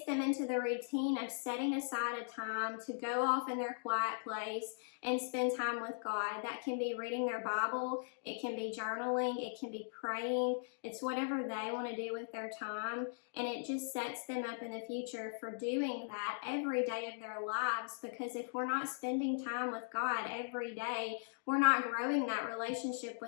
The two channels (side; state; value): right; silent; digital silence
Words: them into the routine of setting aside a time to go off in their quiet place and spend time with God. That can be reading their Bible, it can be journaling, it can be praying. It's whatever they want to do with their time, and it just sets them up in the future for doing that every day of their lives, because if we're not spending time with God every day, we're not growing that relationship